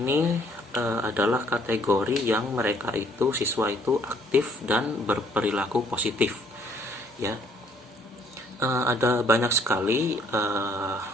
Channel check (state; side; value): normal; both; correlation 0.63